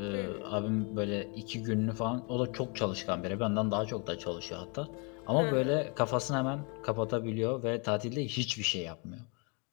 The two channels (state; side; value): quieter; right; 33.6 dB